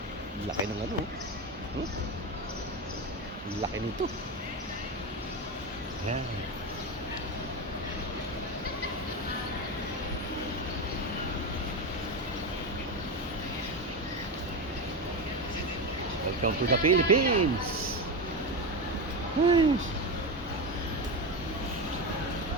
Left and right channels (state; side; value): normal; both; correlation 0.17